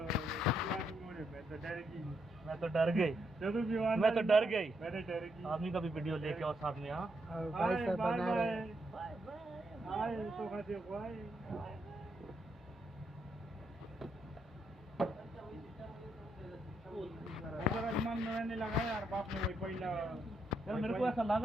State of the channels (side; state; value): both; normal; correlation 0.78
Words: मैं तो डर गई। आदमी का भी वीडियो लेके और साथ में। हाँ, और भाई साहब बना रहे हैं। मैंने लगाया यार, बाप ने वही पहला यार मेरे को ऐसा लग